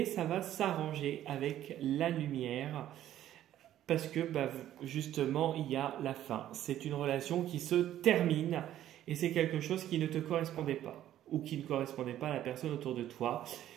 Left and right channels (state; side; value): quieter; left; 12.3 dB